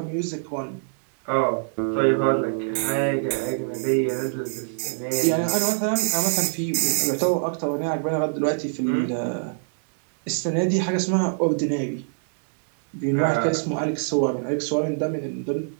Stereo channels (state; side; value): silent; left; 61 dB below the other